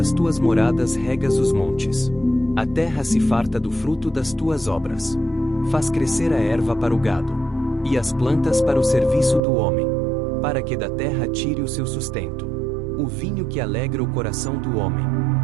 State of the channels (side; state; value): left; drops out; at 9.4 s